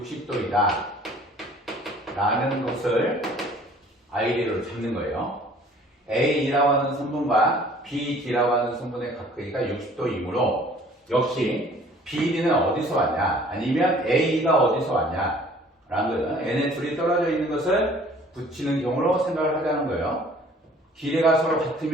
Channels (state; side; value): normal; both; correlation 0.53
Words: 라는 것을 아이디어로 잡는 거예요. A라고 하는 선분과 BD라고 하는 선분의 각 크기가 60도이므로 역시 BD는 어디서 왔냐 아니면 A가 어디서 왔냐 라는 거예요. 얘네 둘이 떨어져 있는 것을 붙이는 경우로 생각을 하자는 거예요. 길이가 서로